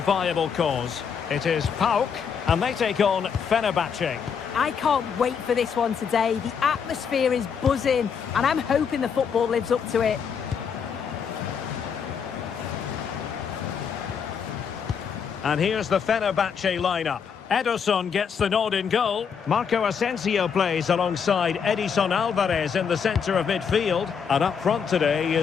cause. It is PAOK, and they take on Fenerbahce. I can't wait for this one today. The atmosphere is buzzing, and I'm hoping the football lives up to it. And here's the Fenerbahce lineup. Ederson gets the nod in goal. Marco Asensio plays alongside Edison Alvarez in the centre of midfield. And up front today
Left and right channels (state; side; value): quieter; right; 6.8 dB